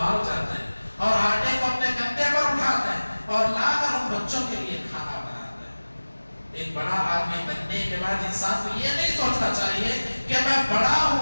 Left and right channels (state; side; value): inverted; both; correlation -1.00